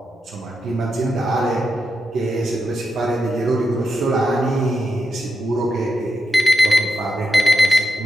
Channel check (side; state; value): both; normal; correlation 0.86